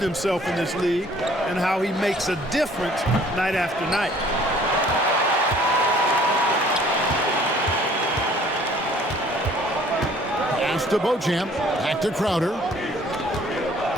in this league and how he makes a difference night after night. Pass to Beauchamp, back to Crowder.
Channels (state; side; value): normal; both; correlation 0.55